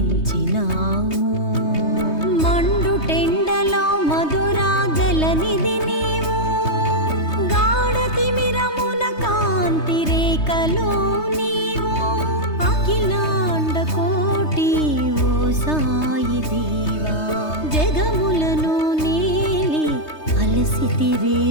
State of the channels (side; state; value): right; late; 3.3 ms